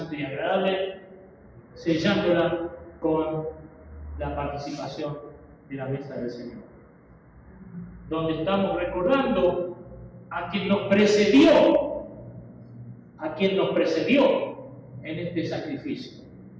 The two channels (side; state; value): both; identical; correlation 1.00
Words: y agradable, sellándola con la participación de la mesa del Señor, donde estamos recordando a quien nos precedió, en este sacrificio.